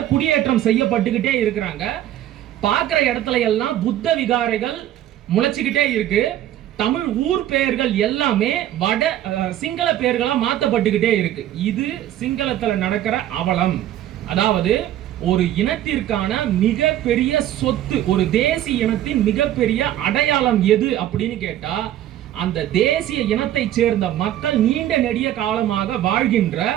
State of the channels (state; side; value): quieter; left; 12.5 dB